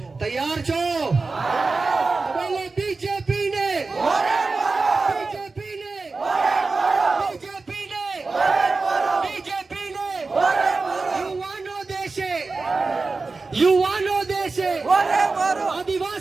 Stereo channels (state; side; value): quieter; left; 3.9 dB